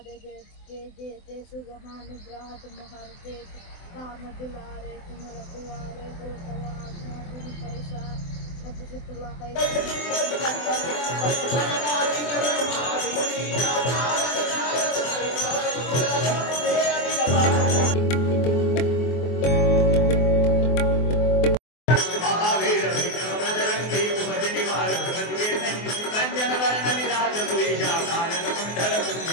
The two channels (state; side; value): late; right; 24 ms